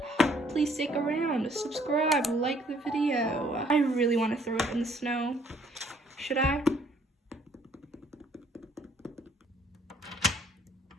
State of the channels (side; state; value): both; normal; correlation 0.62